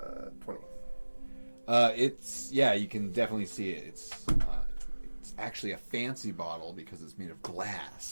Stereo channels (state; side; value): inverted; both; correlation -1.00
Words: You can definitely see it. It's actually a fancy bottle because it's made of